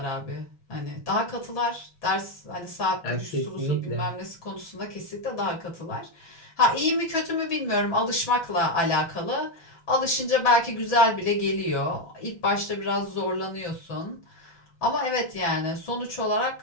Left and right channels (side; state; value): right; late; 5.9 ms